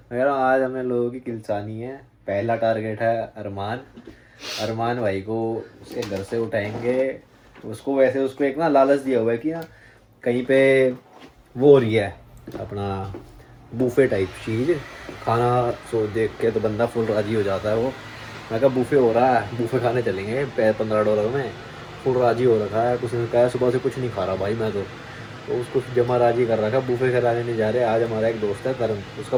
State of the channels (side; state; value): both; identical; correlation 1.00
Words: कह रहा हूँ आज हमने लोगों की किलसानी है। पहला टारगेट है अरमान भाई को उसके घर से उठाएंगे। उसको वैसे उसको एक ना लालच दिया हुआ है कि ना कहीं पे वो हो रही है अपना बूफे टाइप चीज़ खाना, सो देख के तो बंदा फुल राजी हो जाता है। वो मैं कहा बूफे हो रहा है, बूफे खाने चलेंगे $15 में। फुल राजी हो रखा है, उसने कहा सुबह से कुछ नहीं खा रहा भाई मैं तो उसको जमा राजी कर रखा है। बूफे खिलाने नहीं जा रहे। आज हमारा एक दोस्त है करण, उसका